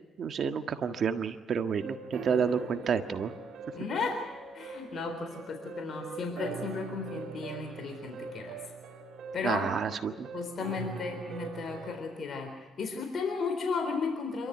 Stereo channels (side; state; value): both; normal; correlation 0.67